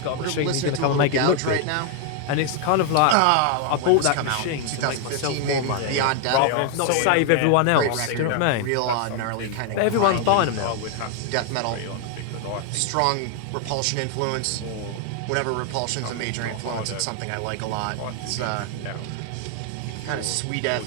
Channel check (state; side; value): different; both; correlation 0.00